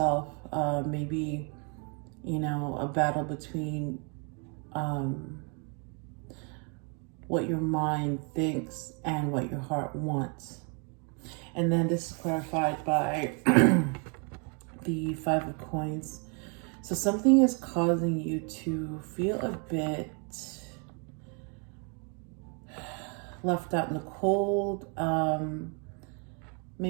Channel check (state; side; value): quieter; left; 37.0 dB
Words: Maybe, you know, a battle between what your mind thinks and what your heart wants. And then this is clarified by the 5 of Coins. So something is causing you to feel a bit left out in the cold,